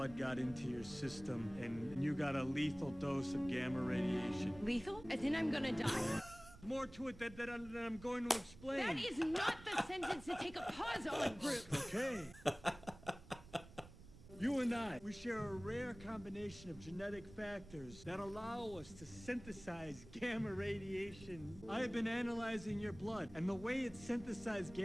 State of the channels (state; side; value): noise; right; rumble, 18 dB below the sound